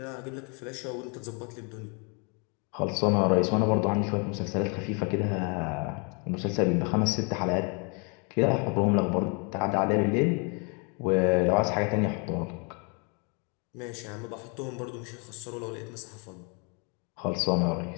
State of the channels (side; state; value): right; quieter; 34.7 dB